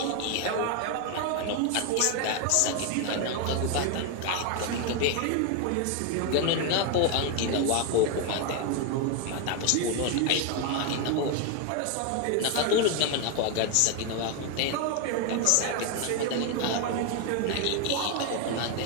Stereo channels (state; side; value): different; both; correlation 0.01